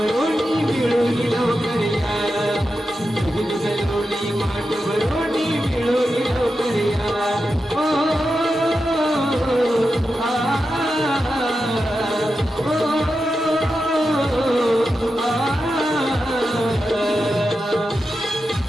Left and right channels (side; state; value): both; normal; correlation 0.90